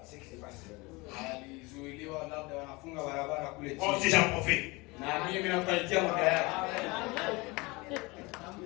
ce qui s'est passé. Moi aussi j'en profite.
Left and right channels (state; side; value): quieter; right; 24.7 dB